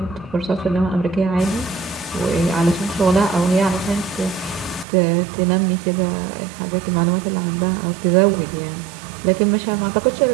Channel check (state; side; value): drops out; left; at 4.9 s